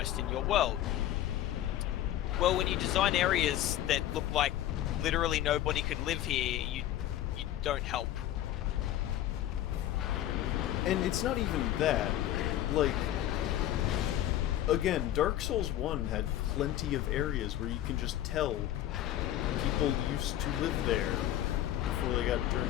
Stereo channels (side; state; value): right; quieter; 12.9 dB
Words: in your world. Well, when you design areas that look like literally nobody could live here, you don't help. And it's not even that. Like, again, Dark Souls 1 had plenty of areas where you can just tell people used to live there before they got